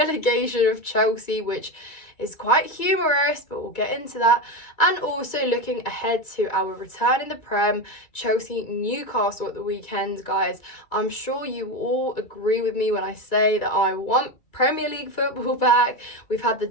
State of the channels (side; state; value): right; late; 2.3 ms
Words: of Chelsea, which is quite humorous, but we'll get into that. And also looking ahead to our return in the Prem, Chelsea Newcastle at the weekend. Guys, I'm sure you all agree with me when I say that I want Premier League football back. We've had the